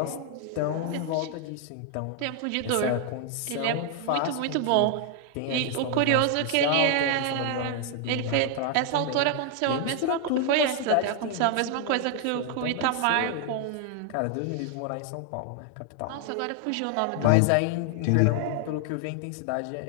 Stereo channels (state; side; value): different; both; correlation 0.00